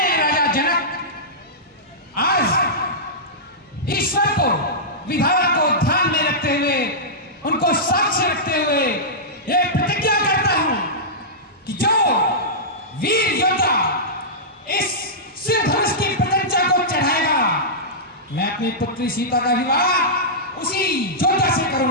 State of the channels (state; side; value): normal; both; correlation -0.14